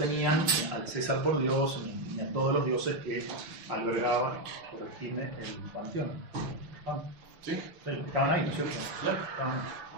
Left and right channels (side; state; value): left; late; 6.0 ms